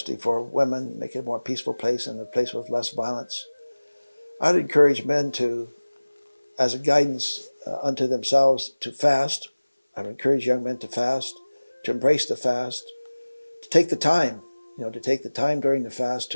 for women, make it a more peaceful place and a place with less violence. I'd encourage men to, as a guidance unto themselves, to fast. I'd encourage young men to fast, to embrace the fast, to take the time, to take the time during the fast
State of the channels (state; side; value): inverted; both; correlation -1.00